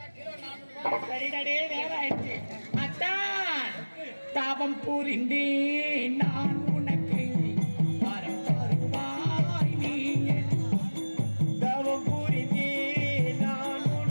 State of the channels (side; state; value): both; inverted; correlation -1.00